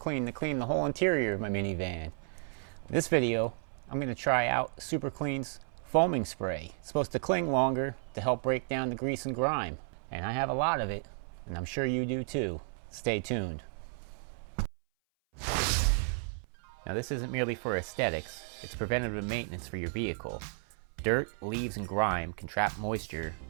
to clean the whole interior of my minivan. In this video, I'm going to try out Super Clean's foaming spray. It's supposed to cling longer to help break down the grease and grime. And I have a lot of it, and I'm sure you do too. Stay tuned. Now this isn't merely for aesthetics, it's preventative maintenance for your vehicle. Dirt, leaves, and grime can trap moisture,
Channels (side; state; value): left; silent; 56 dB below the other